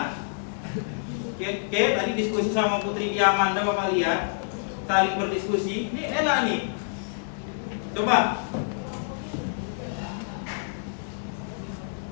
Oke, tadi diskusi sama Putri Diamanda, Bapak lihat saling berdiskusi. Ini enak nih. Coba.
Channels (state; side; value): silent; right; digital silence